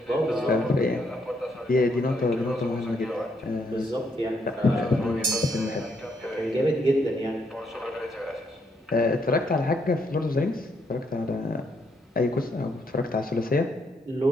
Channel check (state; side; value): normal; both; correlation 0.75